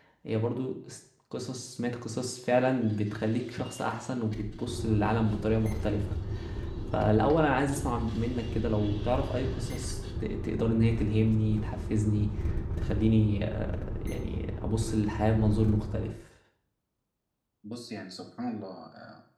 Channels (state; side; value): identical; both; correlation 1.00